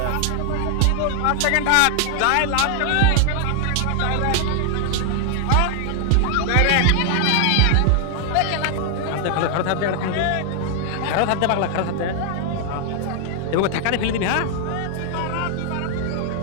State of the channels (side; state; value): both; different; correlation 0.00